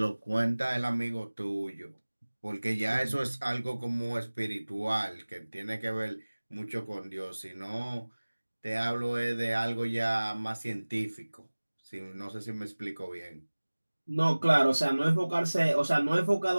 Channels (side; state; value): both; inverted; correlation -1.00